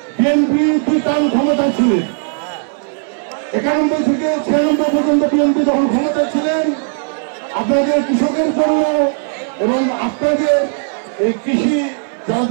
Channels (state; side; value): silent; left; 60 dB below the other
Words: বিএনপি 2 টার্ম ক্ষমতা ছিলেন, 91 থেকে 96 পর্যন্ত বিএনপি যখন ক্ষমতা ছিলেন, আপনাদের কৃষকের জন্য এবং আপনাদের এই কৃষি